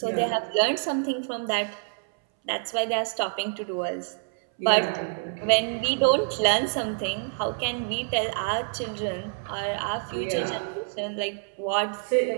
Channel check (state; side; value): silent; left; 60 dB below the other